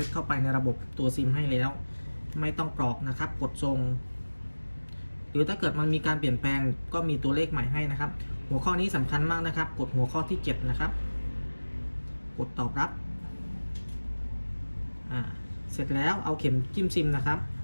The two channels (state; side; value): inverted; both; correlation -1.00